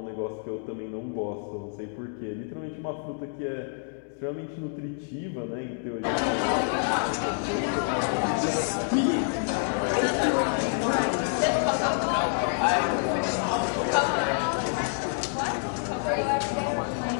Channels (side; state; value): right; silent; digital silence